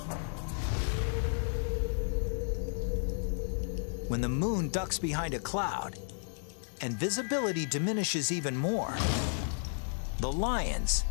When the moon ducks behind a cloud and visibility diminishes even more, the lions,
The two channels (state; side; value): silent; right; digital silence